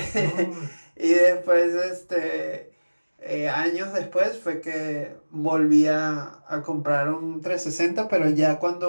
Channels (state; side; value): inverted; both; correlation -1.00